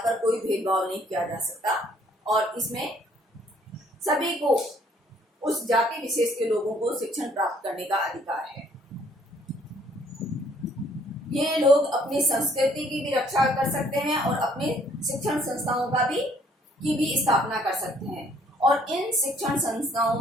कोई भेदभाव नहीं किया जा सकता और इसमें सभी को, उस जाति विशेष के लोगों को शिक्षण प्राप्त करने का अधिकार है। ये लोग अपनी संस्कृति की भी रक्षा कर सकते हैं और अपनी शिक्षण संस्थाओं का की भी स्थापना कर सकते हैं और इन शिक्षण संस्थाओं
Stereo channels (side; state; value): both; normal; correlation 0.62